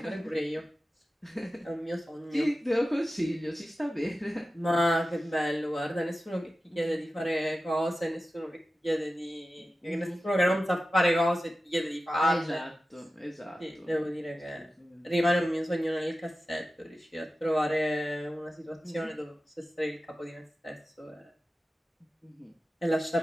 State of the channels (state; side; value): normal; both; correlation 0.94